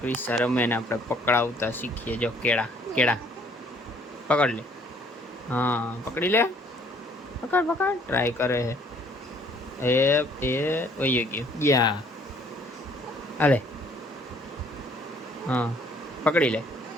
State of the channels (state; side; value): normal; both; correlation 0.60